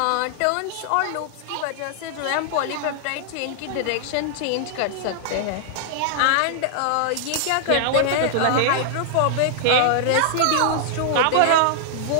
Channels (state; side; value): different; both; correlation -0.01